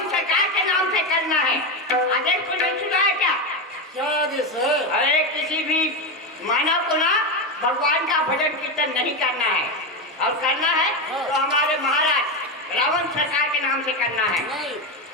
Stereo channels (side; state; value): both; normal; correlation 0.13